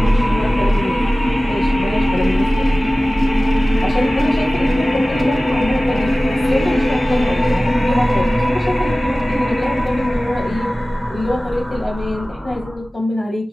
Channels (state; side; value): normal; both; correlation 0.97